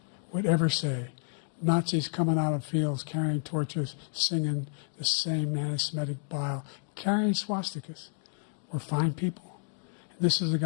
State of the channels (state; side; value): silent; right; 58 dB below the other